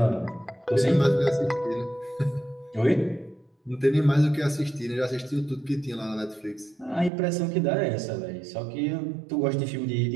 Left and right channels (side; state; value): left; drops out; at 7.1 s